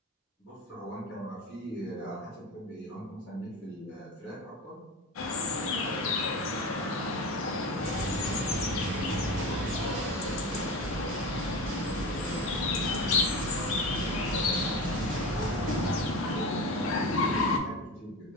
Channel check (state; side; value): normal; both; correlation 0.29